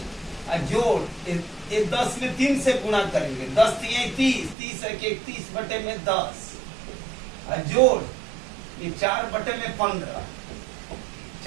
जोड़ ये 10 में 3 से गुणा करेंगे, 10 3 30, 30 1 31/10 जोड़ ये 4/15,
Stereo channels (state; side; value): drops out; left; at 4.5 s